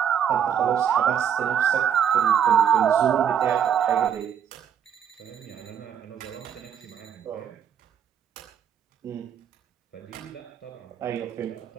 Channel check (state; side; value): quieter; left; 8.6 dB